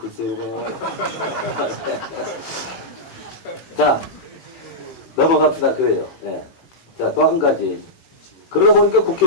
나와요. 자, 넘어갑시다. 그래요. 네. 자, 또 한 가지. 그러다 보니까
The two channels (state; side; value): late; right; 18 ms